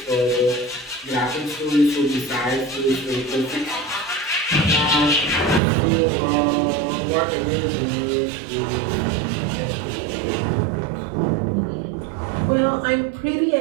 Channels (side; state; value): left; drops out; at 5.6 s